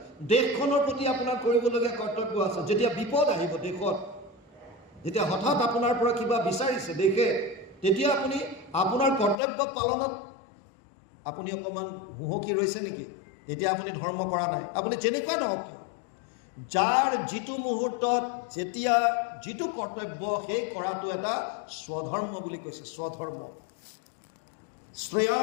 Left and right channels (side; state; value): right; drops out; at 9.4 s